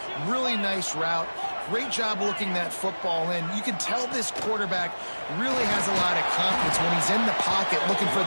Really nice route. Great job looking that football in. You can tell this quarterback really has a lot of confidence when he's in the pocket looking for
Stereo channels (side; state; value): both; inverted; correlation -1.00